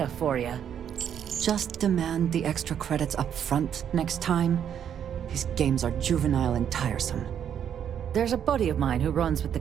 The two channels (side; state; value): left; quieter; 8.9 dB